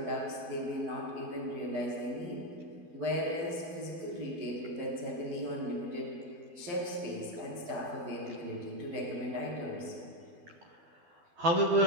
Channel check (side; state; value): left; late; 12 ms